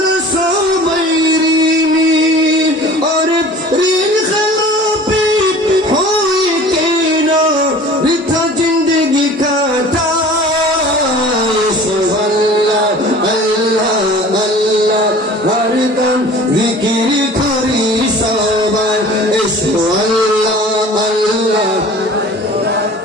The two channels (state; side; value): normal; both; correlation 0.43